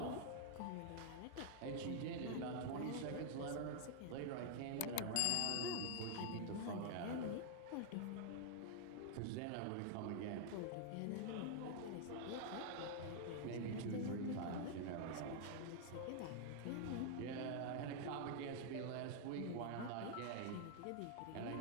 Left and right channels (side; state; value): both; different; correlation -0.01